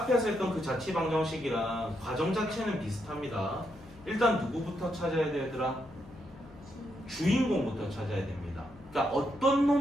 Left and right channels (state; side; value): noise; left; hum, 21 dB below the sound